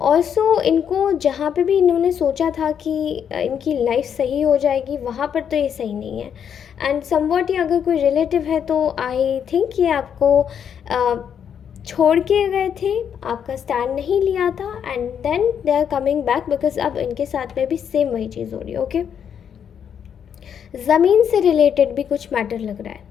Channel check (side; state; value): right; quieter; 8.2 dB